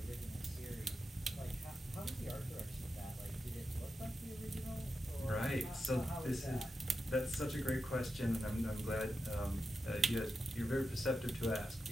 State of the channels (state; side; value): normal; both; correlation 0.89